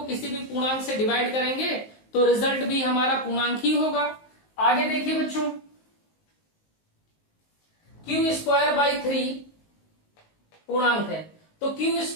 किसी भी पूर्णांक से डिवाइड करेंगे तो रिजल्ट भी हमारा पूर्णांक ही होगा। आगे देखिए बच्चों, क्यू स्क्वायर बाई 3 पूर्णांक है, तो क्यू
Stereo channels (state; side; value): late; right; 19 ms